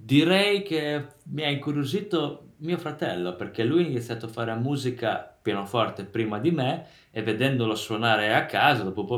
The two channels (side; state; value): both; identical; correlation 1.00